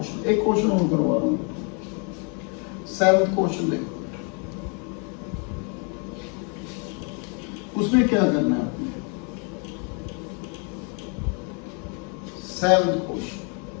एक क्वेश्चन और करवा रहा हूँ, 7th क्वेश्चन देखो, उसमें क्या करना है आपने, 7th question,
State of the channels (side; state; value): right; quieter; 36.0 dB